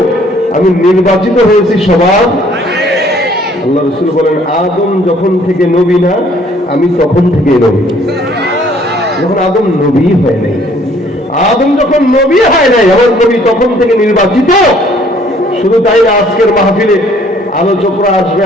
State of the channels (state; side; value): normal; both; correlation 0.60